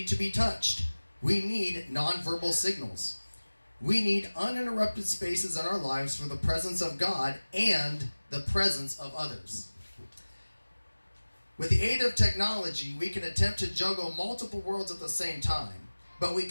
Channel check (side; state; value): both; inverted; correlation -1.00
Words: to be touched. We need nonverbal signals. We need uninterrupted spaces in our lives for the presence of God and the presence of others. With the aid of technology, we can attempt to juggle multiple worlds at the same time, but we